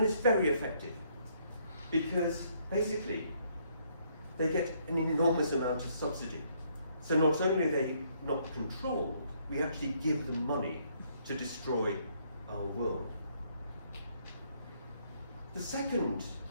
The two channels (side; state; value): both; inverted; correlation -0.69